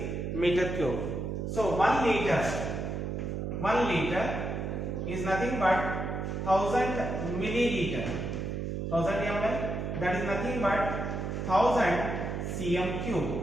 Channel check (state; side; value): noise; right; hum, 3 dB below the sound